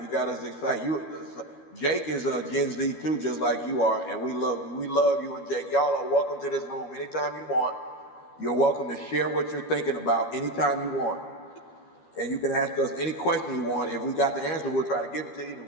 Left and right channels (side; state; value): right; late; 12 ms